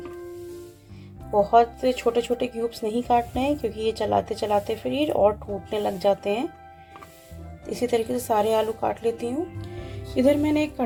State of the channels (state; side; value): identical; both; correlation 1.00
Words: बहुत छोटे छोटे क्यूब्स नहीं काटने हैं क्योंकि ये चलाते चलाते फिर ये और टूटने लग जाते हैं। इसी तरीके से सारे आलू काट लेती हूँ। इधर मैंने एक